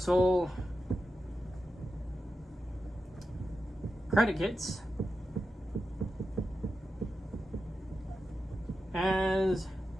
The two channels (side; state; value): both; normal; correlation 0.90